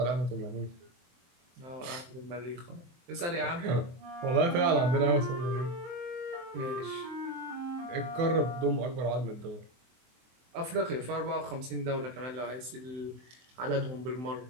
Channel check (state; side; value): late; left; 23 ms